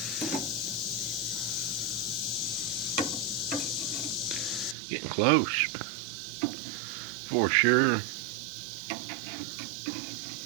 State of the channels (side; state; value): left; drops out; at 4.8 s